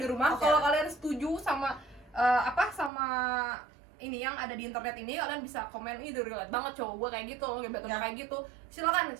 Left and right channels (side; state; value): left; drops out; at 2.9 s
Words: rumah. oke. Kalau kalian setuju sama sama ini yang ada di internet ini, kalian bisa komen, ini relate banget cowok gue kayak gitu loh, gebetan kayak gitu. Silakan